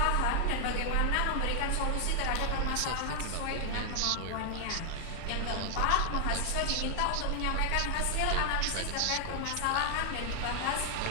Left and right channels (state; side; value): different; both; correlation 0.00